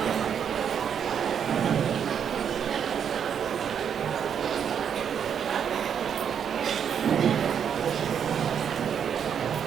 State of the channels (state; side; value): quieter; left; 8.0 dB